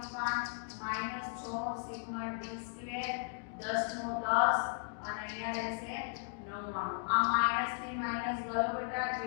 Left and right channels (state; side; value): silent; right; 54 dB below the other